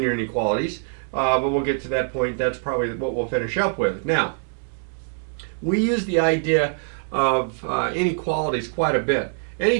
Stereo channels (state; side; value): silent; left; 63 dB below the other